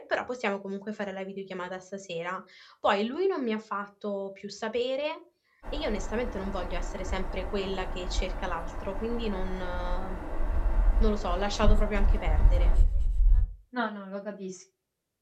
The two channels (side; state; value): both; identical; correlation 1.00